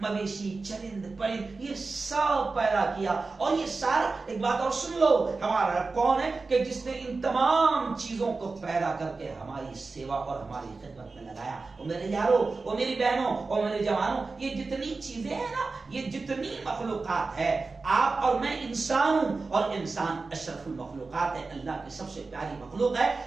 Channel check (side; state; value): left; quieter; 3.9 dB